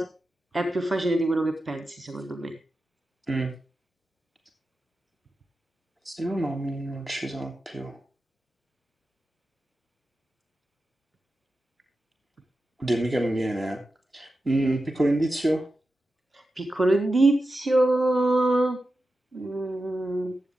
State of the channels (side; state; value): both; normal; correlation 0.91